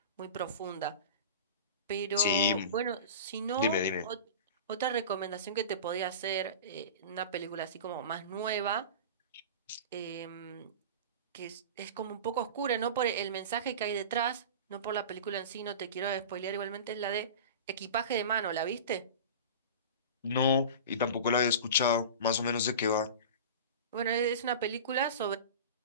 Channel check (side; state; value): both; inverted; correlation -0.32